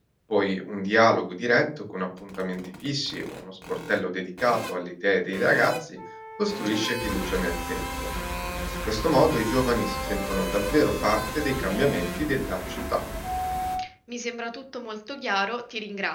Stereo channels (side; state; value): both; identical; correlation 1.00